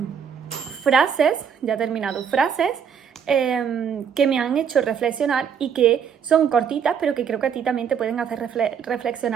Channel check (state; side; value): quieter; left; 7.4 dB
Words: frases, ya he terminado, frases que me han hecho reflexionar y que son cortitas, pero que creo que a ti también te pueden hacer